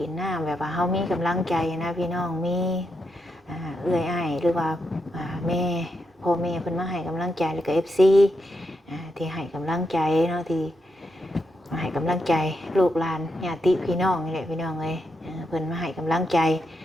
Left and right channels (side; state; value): both; normal; correlation 0.83